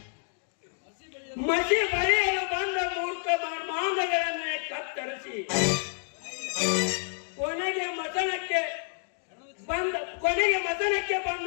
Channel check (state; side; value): silent; right; digital silence